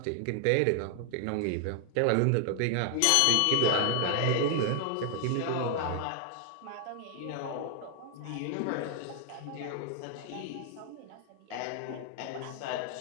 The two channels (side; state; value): both; different; correlation 0.00